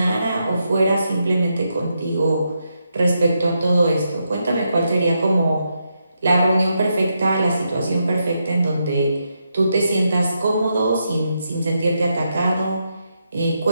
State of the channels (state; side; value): inverted; both; correlation -0.83